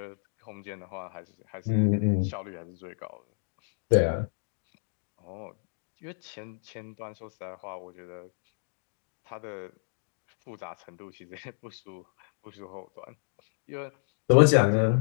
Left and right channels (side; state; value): right; silent; digital silence